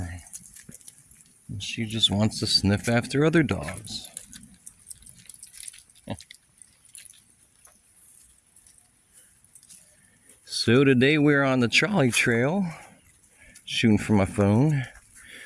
And she just wants to sniff after other dogs. So today we're on the trolley trail. Shooting from my phone.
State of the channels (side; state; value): both; identical; correlation 1.00